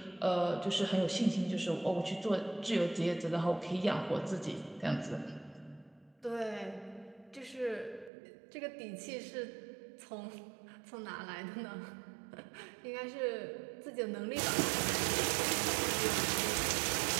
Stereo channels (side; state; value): left; drops out; at 8.1 s